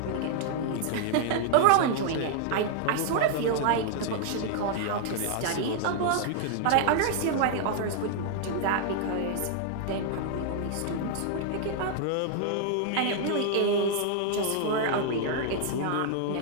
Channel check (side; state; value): both; different; correlation 0.00